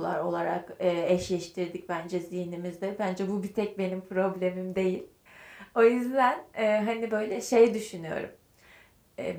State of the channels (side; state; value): both; identical; correlation 1.00